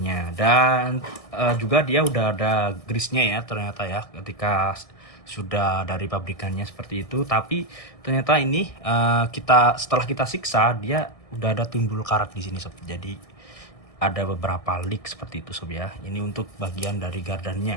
Dan juga dia udah ada grease-nya ya ternyata ya, ketika sudah dari pabrikannya seperti itu. Tapi ternyata ini setelah kita siksa dia udah ada timbul karat di sini sob. Jadi ada beberapa leak seperti itu sob ya. Ini untuk bagian dari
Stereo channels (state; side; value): late; right; 1.6 ms